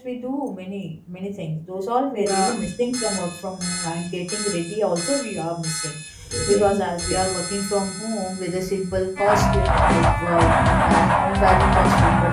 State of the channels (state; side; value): identical; both; correlation 1.00